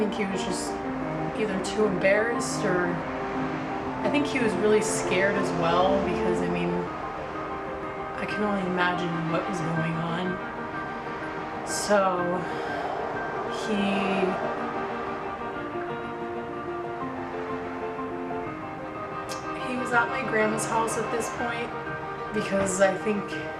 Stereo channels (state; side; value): identical; both; correlation 1.00